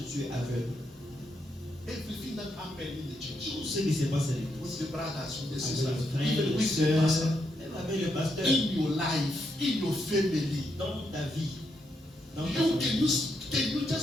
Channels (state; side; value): normal; both; correlation 0.80